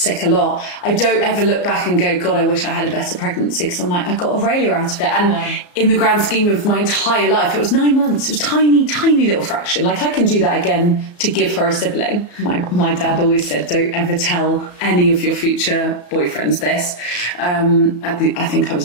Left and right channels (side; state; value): right; late; 34 ms